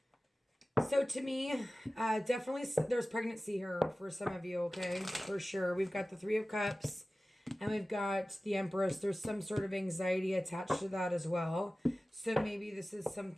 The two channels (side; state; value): both; normal; correlation 0.96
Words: So to me, definitely there's pregnancy here for some of you, okay? For sure. We've got the Three of Cups, and we've got the Empress. There's some sort of anxiety attached to that as well. So maybe this is